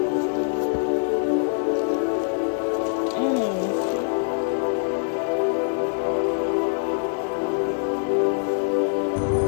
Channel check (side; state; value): right; silent; digital silence